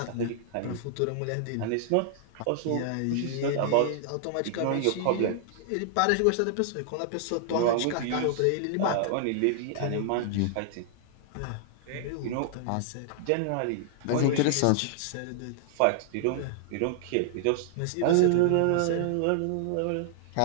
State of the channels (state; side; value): different; both; correlation -0.01